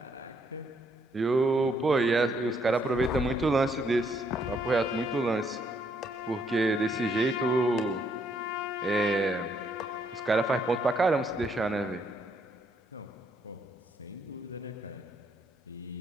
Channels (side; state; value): both; normal; correlation 0.72